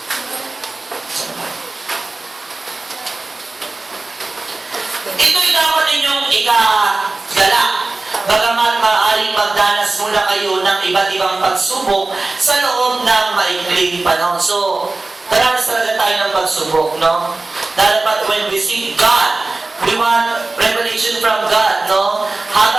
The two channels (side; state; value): left; quieter; 3.3 dB